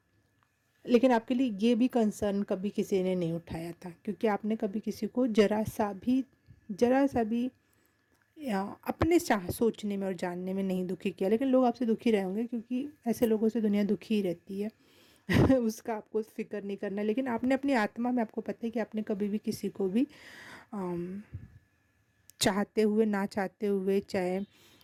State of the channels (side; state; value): both; identical; correlation 1.00